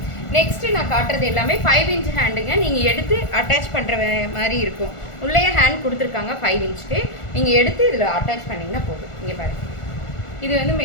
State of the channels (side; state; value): right; late; 1.4 ms